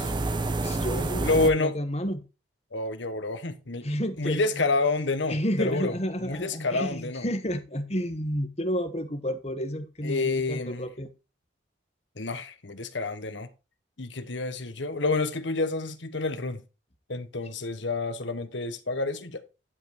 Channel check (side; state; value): both; normal; correlation 0.17